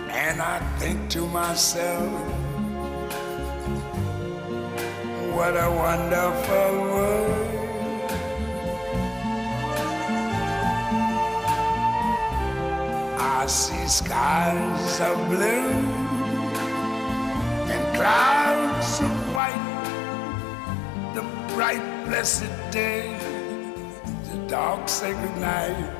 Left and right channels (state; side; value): drops out; right; at 19.4 s